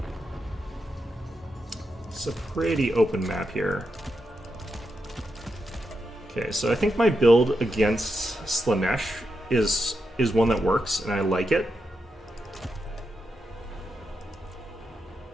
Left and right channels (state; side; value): normal; both; correlation 0.86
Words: It's a pretty open map here. Okay, so I think my build against Slaanesh is one that works, and I like it.